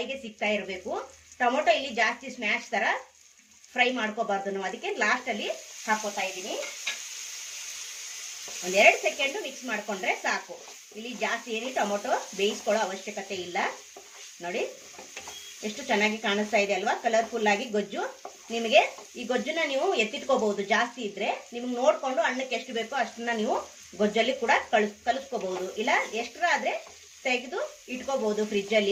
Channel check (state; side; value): identical; both; correlation 1.00